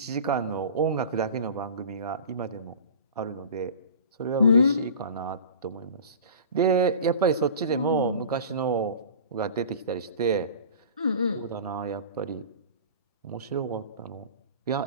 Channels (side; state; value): both; inverted; correlation -0.38